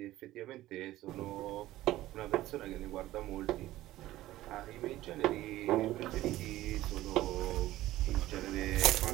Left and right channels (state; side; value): quieter; left; 15.6 dB